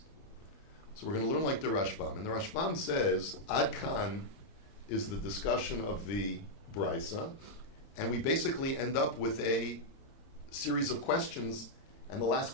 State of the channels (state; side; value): late; right; 31 ms